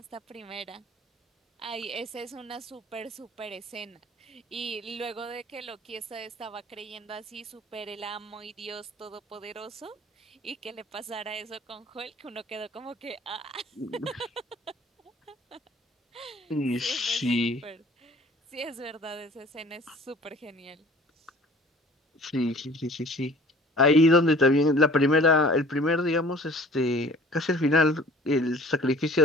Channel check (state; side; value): normal; both; correlation 0.48